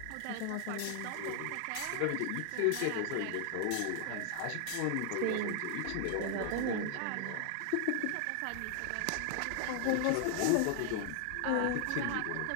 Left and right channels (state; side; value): different; both; correlation 0.00